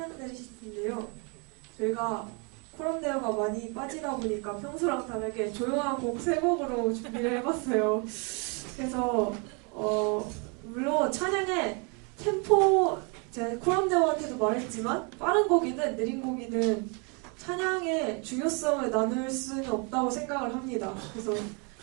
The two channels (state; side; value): quieter; left; 33.6 dB